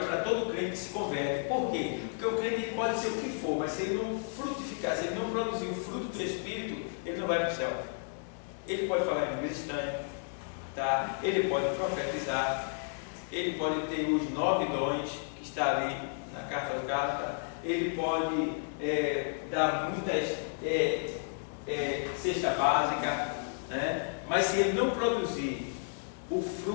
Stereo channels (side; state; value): right; silent; digital silence